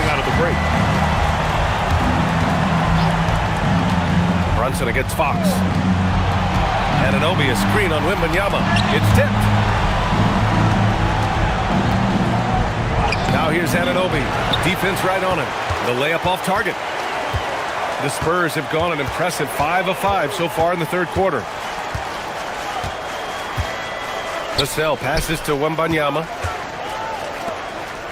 out of the break. Brunson against Fox. Anunoby, a screen on Wembanyama. It's tipped. Now here's Anunoby. Defense right on him. The layup off target. The Spurs have gone an impressive 5 of 5 so far in the third quarter. Vassell passes to Wembanyama.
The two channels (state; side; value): identical; both; correlation 1.00